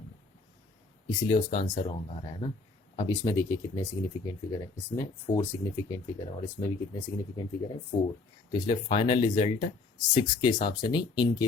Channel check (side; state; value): right; quieter; 3.9 dB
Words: इसलिए उसका आंसर रॉन्ग आ रहा है ना। अब इसमें देखिए कितने सिग्निफिकेंट फिगर है, इसमें 4 सिग्निफिकेंट फिगर है और इसमें भी कितने सिग्निफिकेंट फिगर है? 4। तो इसलिए फाइनल रिजल्ट 6 के हिसाब से नहीं, इनके